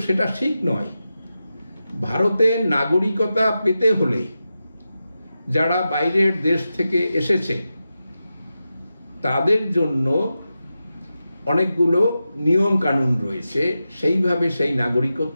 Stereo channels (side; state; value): both; inverted; correlation -0.91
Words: সেটা ঠিক নয়। ভারতের নাগরিকতা পেতে হলে যারা বাইরের দেশ থেকে এসেছে তাদের জন্য অনেকগুলো নিয়ম কানুন রয়েছে, সেইভাবে সেই